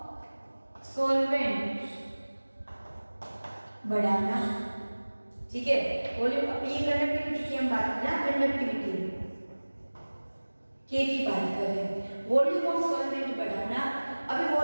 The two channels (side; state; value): both; inverted; correlation -1.00